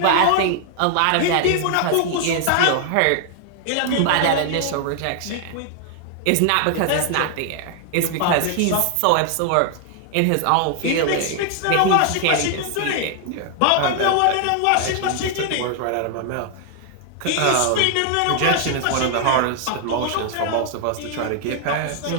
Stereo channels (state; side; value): different; both; correlation 0.00